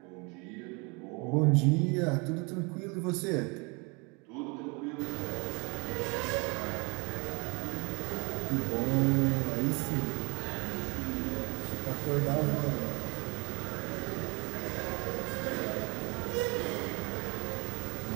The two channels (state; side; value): quieter; left; 30.3 dB